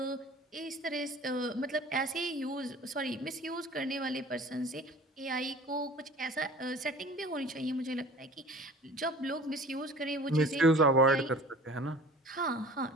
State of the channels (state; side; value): normal; both; correlation 0.44